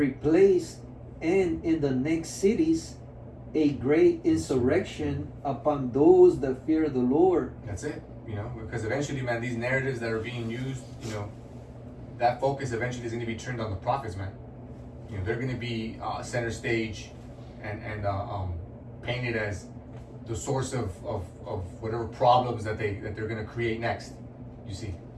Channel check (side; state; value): both; identical; correlation 1.00